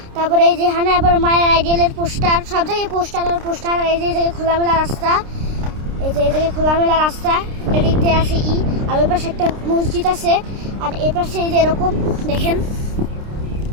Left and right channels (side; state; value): left; late; 29 ms